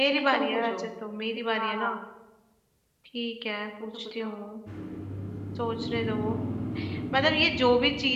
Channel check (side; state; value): both; identical; correlation 1.00